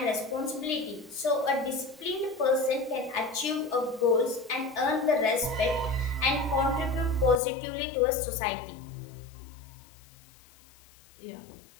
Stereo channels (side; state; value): right; drops out; at 7.4 s